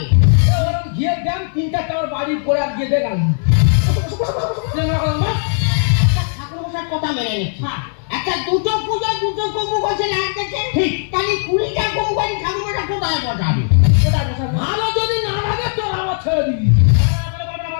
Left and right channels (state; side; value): silent; right; digital silence